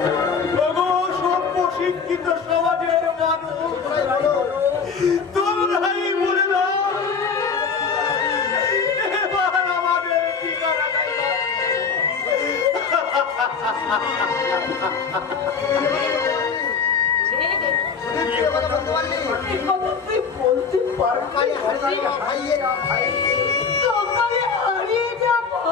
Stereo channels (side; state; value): right; quieter; 5.6 dB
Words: সভ্য শিক্ষিত সমাজের মানুষ তোমরাই বলে দাও এবার আমাদের ঠিকানাটাই তুই বলতে পারবি সকালে হারিয়ে যা